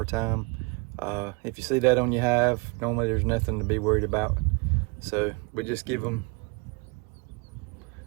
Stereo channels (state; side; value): quieter; left; 29.4 dB